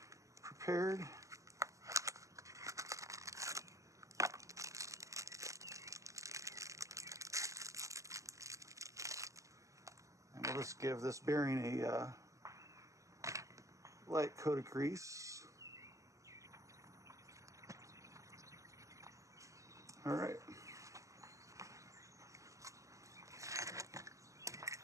prepared. And we'll just give this bearing a light coat of grease. All right.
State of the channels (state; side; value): late; left; 0.16 ms